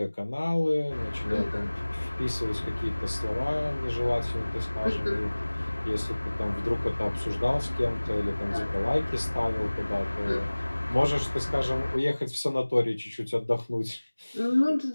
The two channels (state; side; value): inverted; both; correlation -1.00